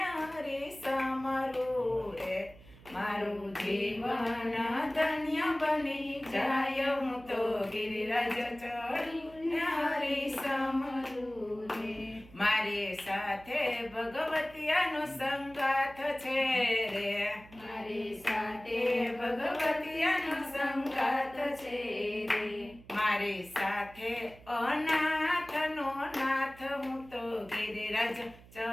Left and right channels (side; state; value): right; noise; hum, 21 dB below the sound